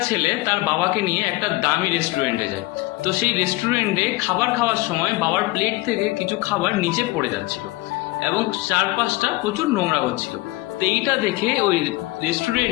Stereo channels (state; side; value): quieter; right; 20.7 dB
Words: ছেলে তার বাবাকে নিয়ে একটা দামি রেস্টুরেন্টে যায়। তো সেই রেস্টুরেন্টে খাবার খাওয়ার সময় বাবার প্লেট থেকে কিছু খাবার নিচে পড়ে যাচ্ছিল এবং চারপাশটা প্রচুর নোংরা হচ্ছিল। তো এইটা দেখে ওই